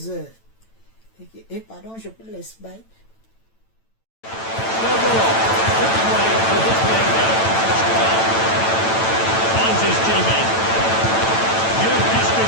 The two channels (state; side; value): late; right; 9.0 ms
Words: heures. Et pardon, je peux laisser bailler.